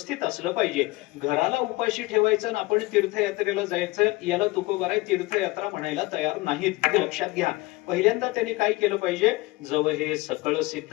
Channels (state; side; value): quieter; right; 21.3 dB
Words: असलं पाहिजे. घराला उपाशी ठेवायचं आणि आपण तीर्थयात्रेला जायचं याला तुकोबाराय तीर्थयात्रा म्हणायला तयार नाहीत, हे लक्षात घ्या. पहिल्यांदा त्यांनी काय केलं पाहिजे? जव हे सकळ सिद्ध